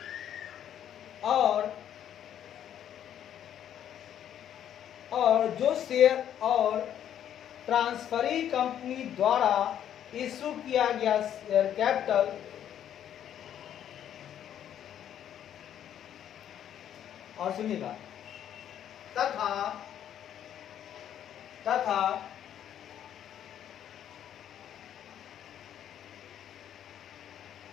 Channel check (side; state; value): right; quieter; 10.2 dB